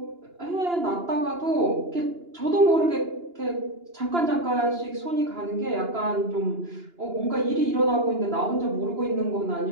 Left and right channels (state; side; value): late; left; 2.9 ms